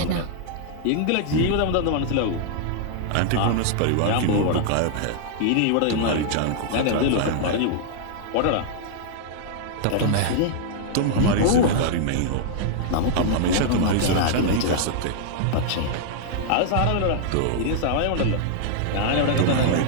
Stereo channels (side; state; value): both; different; correlation 0.00